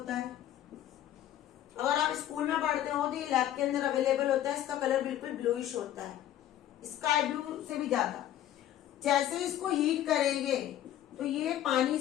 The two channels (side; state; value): right; quieter; 12.1 dB